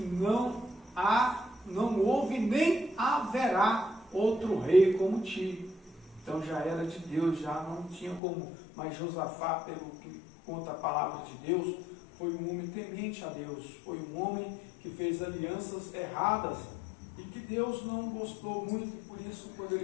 não houve nem haverá outro rei como ti. Então já era de Deus, já não tinha como. Mas Josafá, pelo que conta a palavra de Deus, foi um homem temente a Deus, foi um homem que fez alianças erradas e que Deus não gostou muito. Por isso, quando ele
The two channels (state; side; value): drops out; right; at 8.2 s